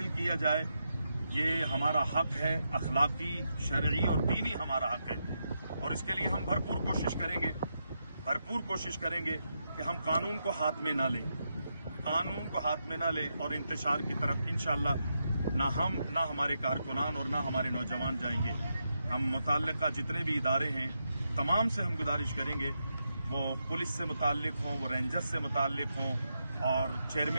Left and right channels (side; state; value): both; inverted; correlation -0.84